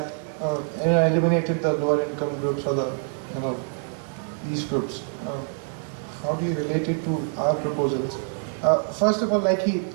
eliminated the lower income groups or the these groups. How do you relate it to our proposals? First of all, like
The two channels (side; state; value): left; silent; 60 dB below the other